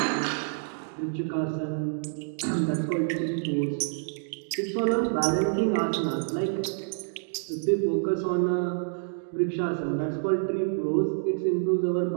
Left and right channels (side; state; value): left; silent; digital silence